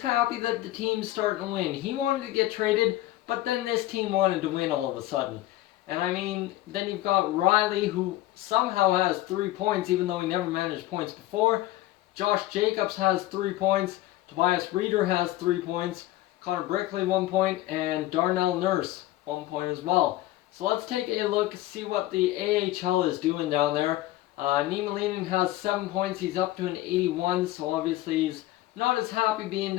that the team's starting to win. He wanted to get traded, but then this team wanted to win all of a sudden. And I mean, then you've got Riley, who somehow has 3 points, even though he never managed points before. Josh Jacobs has 3 points. Tobias Reeder has 3 points. Connor Brickley, 1 point. And Darnell Nurse, 1 point as well. So let's take a look, see what the AHL is doing down there. Niemelainen has 7 points. He's up to an 81, so obviously he's not as happy being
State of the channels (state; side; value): quieter; right; 15.9 dB